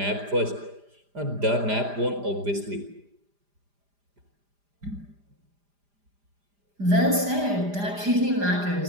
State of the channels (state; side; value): late; left; 5.0 ms